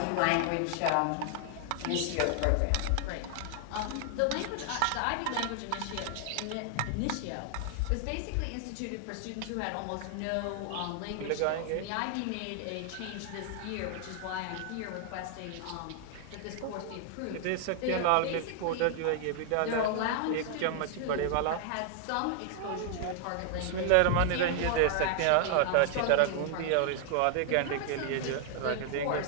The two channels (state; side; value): different; both; correlation 0.00